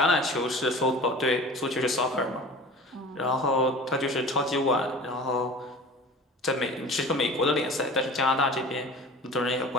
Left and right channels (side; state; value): both; normal; correlation 0.40